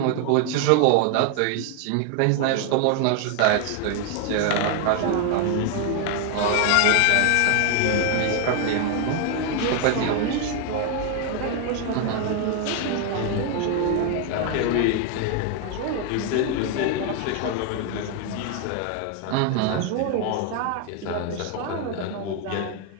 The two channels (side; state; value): both; different; correlation 0.01